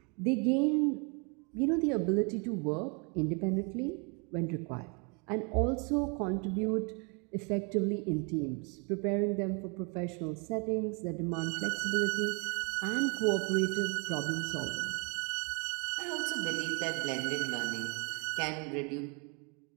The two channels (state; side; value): quieter; left; 34.1 dB